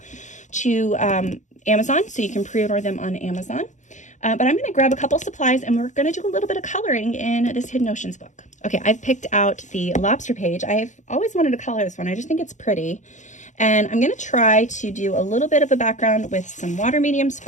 to Amazon, so you can pre-order them on Amazon. But I'm going to grab a couple supplies, and we're going to do a little bit of coloring in this Hidden Oceans book. Okay, I've picked out the lobster page. I've always wanted to color this one. I just think it's pretty. And I'm going to try to do a little bit of a background with some water mediums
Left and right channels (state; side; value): late; right; 0.35 ms